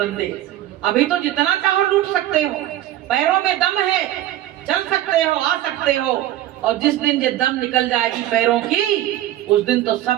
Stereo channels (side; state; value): left; quieter; 13.7 dB